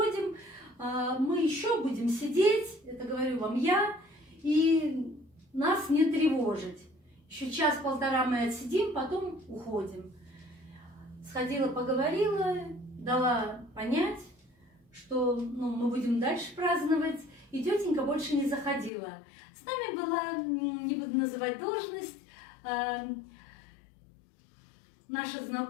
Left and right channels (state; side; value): drops out; right; at 18.9 s